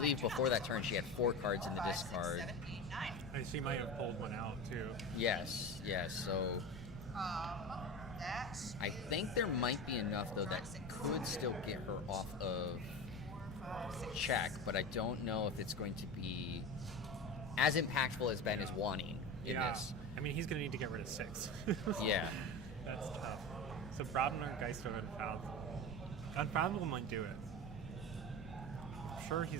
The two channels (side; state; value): both; normal; correlation 0.27